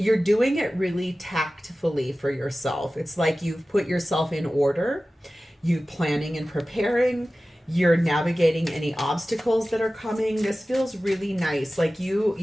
doing it really tactfully for yourself. It's like you've put yourself in order, you're planning and preparing, you're navigating any obstacles that are coming. This feels really nice. Like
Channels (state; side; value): normal; both; correlation 0.96